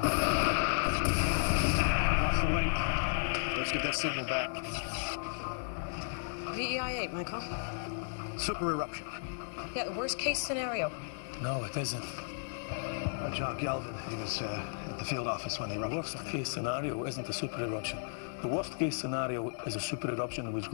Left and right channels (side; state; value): right; silent; digital silence